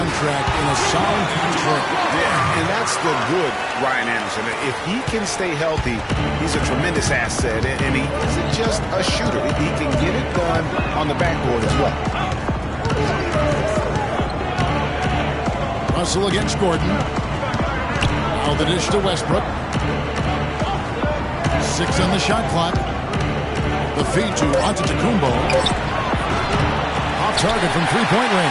in a sound contract. Yeah, and that's the good Ryan Anderson. If he can stay healthy, he's a tremendous asset. And he isn't just a shooter. He can get it done on the backboard as well. Russell against Gordon. Now the dish to Westbrook. 6 on the shot clock. The feed to Antetokounmpo. Off target from 3-point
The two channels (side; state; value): both; identical; correlation 1.00